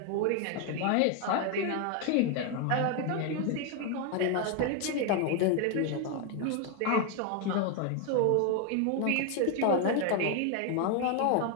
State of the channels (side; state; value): both; different; correlation 0.01